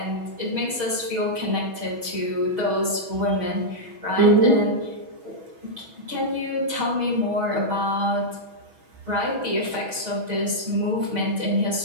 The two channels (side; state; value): left; late; 6.2 ms